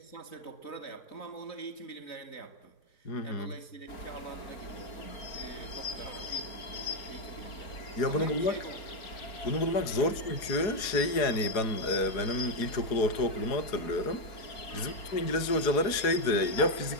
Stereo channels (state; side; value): late; right; 4.7 ms